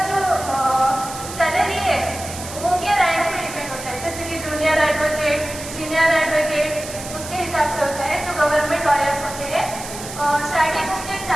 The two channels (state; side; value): noise; right; hiss, 11 dB below the sound